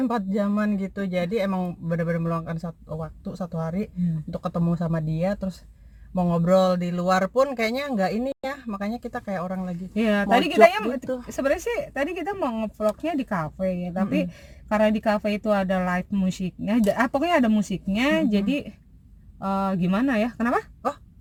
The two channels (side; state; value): both; identical; correlation 1.00